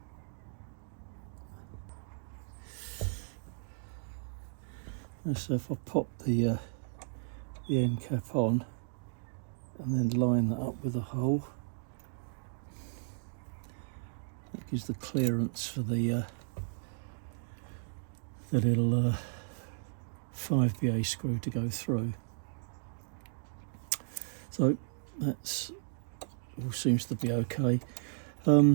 And so if I pop the end cap on and then line that up with a hole, that gives the clearance for the little 5BA screw to go through. So that's all seems to be okay.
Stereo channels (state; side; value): silent; left; digital silence